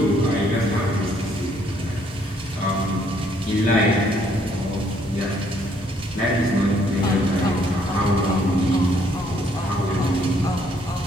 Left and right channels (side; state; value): both; normal; correlation 0.67